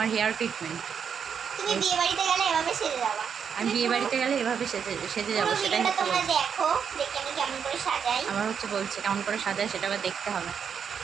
হেয়ার ট্রিটমেন্ট। তুমি বিয়ে বাড়িতে গেলে এভাবে সেজে যাবা। আমি বিয়ে বাড়িতে গেলে এভাবে সেজে যাবো, সেটাই হচ্ছে। তোমরা দেখো, দেখে আমি কেমন করে সাজাই। আমার হচ্ছে বলছে কেমন করে সাজায়, সেটা আবার দেখতে হবে।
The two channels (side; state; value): left; quieter; 7.2 dB